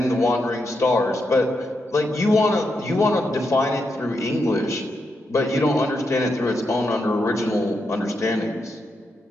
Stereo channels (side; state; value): both; normal; correlation 0.83